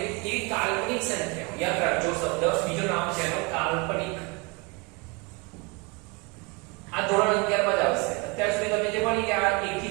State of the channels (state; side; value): quieter; left; 28.3 dB